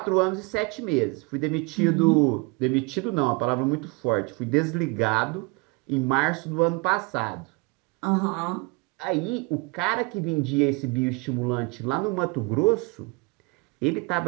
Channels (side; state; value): left; quieter; 27.4 dB